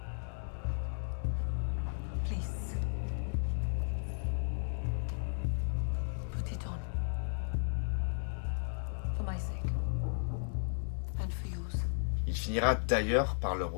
Please. Put it on. For my sake. And for yours. Il finira d'ailleurs par le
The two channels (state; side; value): silent; right; digital silence